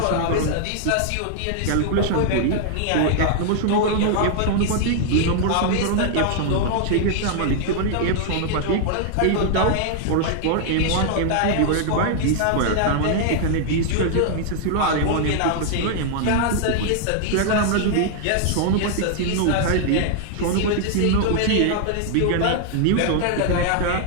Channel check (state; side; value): different; both; correlation 0.00